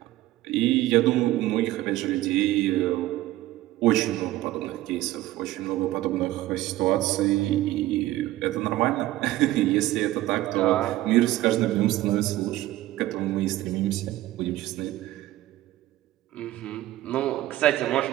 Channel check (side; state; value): left; quieter; 15.9 dB